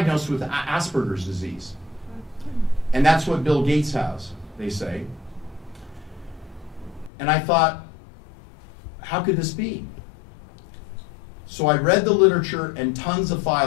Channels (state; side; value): drops out; right; at 7.1 s